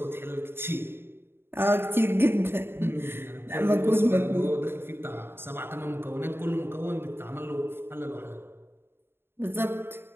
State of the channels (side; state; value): left; late; 0.11 ms